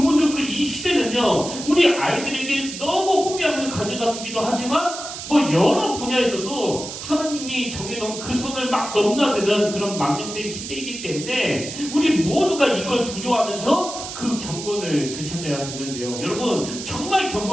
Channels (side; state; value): right; noise; hiss, 9 dB below the sound